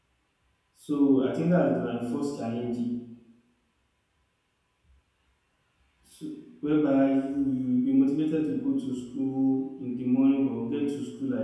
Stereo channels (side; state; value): both; identical; correlation 1.00